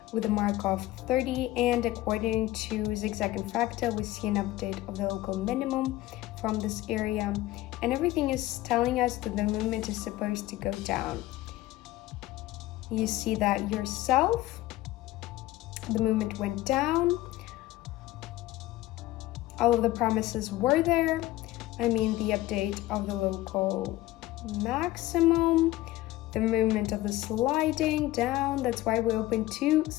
with a mark of 30, and according to zigzag and fractal, we see an update of the local minimum from this area, and everything is telling us that the movement is supposed to go down. You see that yourself, the movement went down. All of the promises were there. I mean, the update of the local maximum, the movement of the sliding down. That's why we open to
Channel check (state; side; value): quieter; right; 16.4 dB